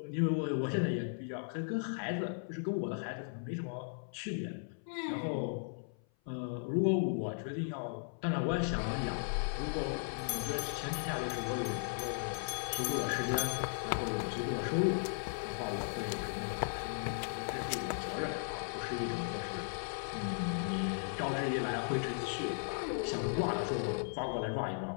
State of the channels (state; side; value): silent; right; 53 dB below the other